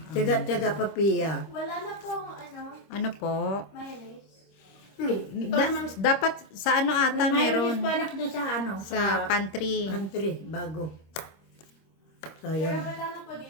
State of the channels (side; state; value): right; late; 26 ms